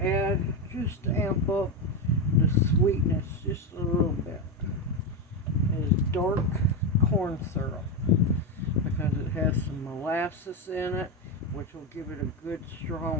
add, just to amp up the sweetness just a little bit, is dark corn syrup, because it has some molasses in it, which will give it a good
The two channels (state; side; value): normal; both; correlation 0.12